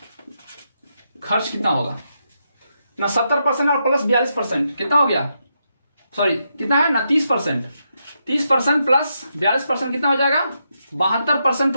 खर्च कितना होगा ना 70% और प्लस 42% कितना हो गया, सॉरी कितना है ना 30%, 30% प्लस 42% कितना हो जाएगा 72%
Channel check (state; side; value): inverted; both; correlation -0.82